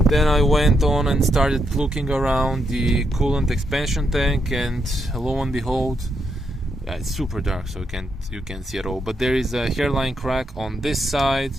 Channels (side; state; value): both; normal; correlation 0.80